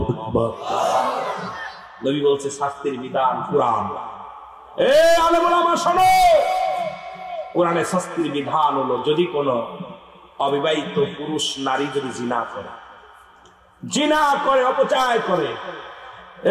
আকবার। নবী বলছে শাস্তির বিধান কোরআন। এ আলেম ওলামা শোনো, কোরআনের শাস্তির বিধান হলো যদি কোন অবিবাহিত পুরুষ নারী যদি জিনা করে অপচয় করে,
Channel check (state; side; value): identical; both; correlation 1.00